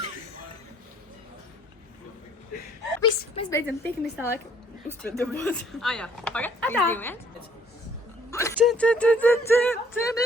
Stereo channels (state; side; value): normal; both; correlation 0.61